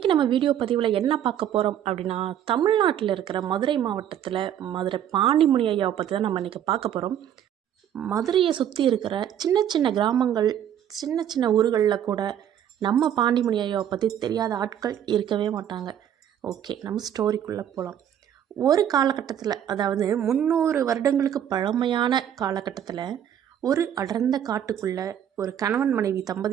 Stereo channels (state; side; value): quieter; left; 10.0 dB